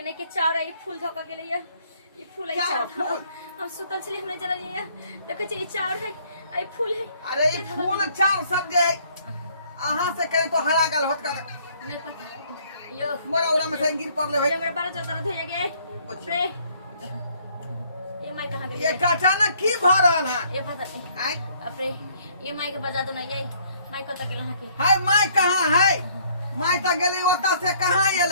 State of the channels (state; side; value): inverted; both; correlation -0.63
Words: नहीं के चार है फूल धोका के लिए ये फूल है क्या चार फूल? हम सुतल छली हमने जरा लिए देखो ये चार है आई फूल है अरे ई फूल चार सब जे अहाँ से कहे तो हरा गल होत कर नहीं पता यो मोरा उरा में से गिर पड़ले होय मेरे बारह जो दर्द हो गए रे ये माई कहां गई ये अचानक की भ रहल है ये पता नहीं आय अपरे ये माई के बजा दो ना ये माई कत गेल हां की हाय माय कहाँ है माय त गेली ओता से कहाँ